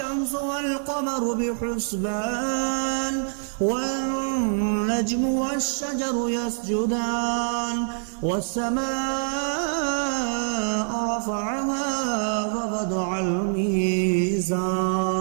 والقمر بحسبان والنجم والشجر يسجدان والسماء رفعها ووضع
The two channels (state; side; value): silent; left; digital silence